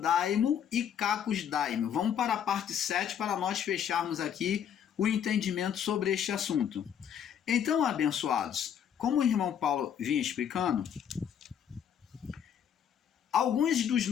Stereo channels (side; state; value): right; quieter; 8.7 dB